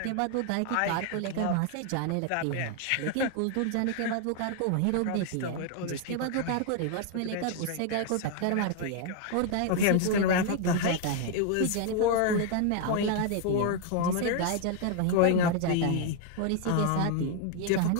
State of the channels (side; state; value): both; different; correlation 0.00